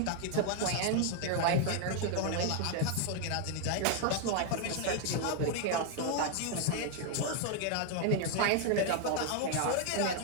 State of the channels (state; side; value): different; both; correlation 0.00